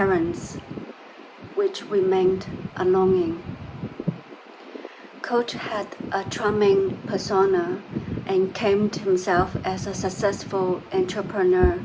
which remained a longing. Coach had a charming persona and claimed himself as a successful entrepreneur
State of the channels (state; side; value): identical; both; correlation 1.00